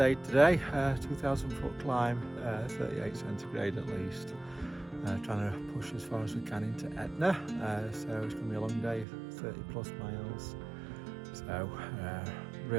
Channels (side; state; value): left; drops out; at 9.1 s